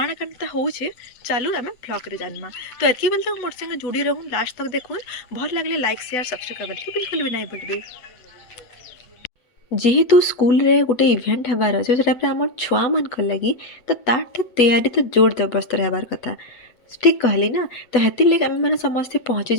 काଣା होउछे चालू आमे ब्लॉग रे जानमा तो एतकी बेल तक मोर संग जुड़ी रहूं लास्ट तक देखून भल लागले लाइक शेयर सब्सक्राइब करबा बिल्कुल भी नहीं भूलबे जेहेतु स्कूल रे गोटे इवेंट हबार अच्छे से आम छुआ मान लगी तो तार तैयारी तो जोर जबरदस्त हबार कथा ठीक कहली ना तो हेतिर लगे आम मैंने समस्ते पहुँची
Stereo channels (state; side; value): late; right; 8.1 ms